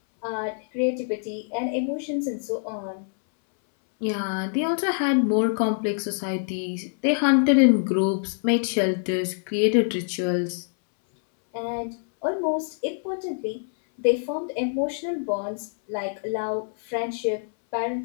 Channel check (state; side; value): silent; right; 60 dB below the other